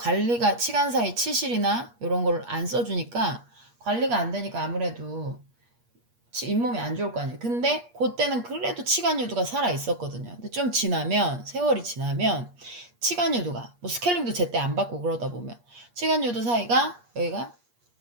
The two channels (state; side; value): late; left; 8.4 ms